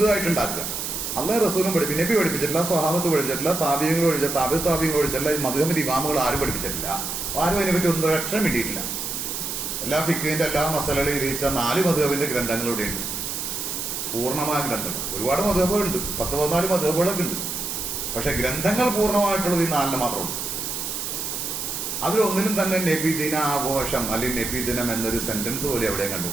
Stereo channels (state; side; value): noise; right; hiss, 4 dB below the sound